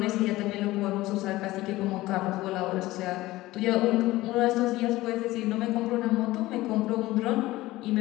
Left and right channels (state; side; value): quieter; right; 17.8 dB